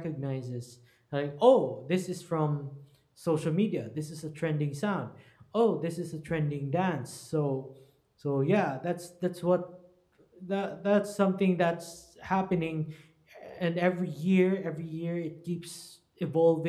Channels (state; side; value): identical; both; correlation 1.00